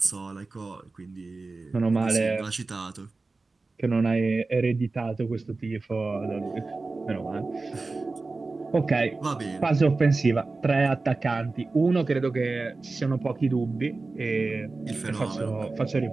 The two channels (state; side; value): quieter; left; 3.6 dB